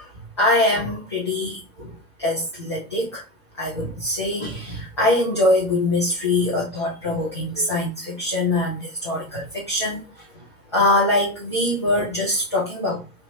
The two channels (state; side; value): normal; both; correlation 0.14